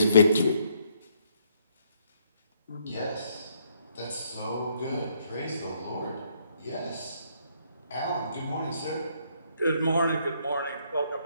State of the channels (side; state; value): both; inverted; correlation -0.70